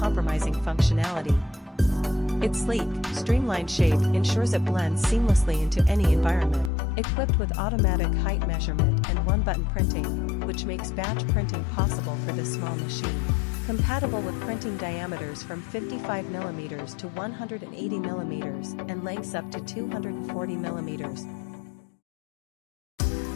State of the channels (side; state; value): right; drops out; at 6.7 s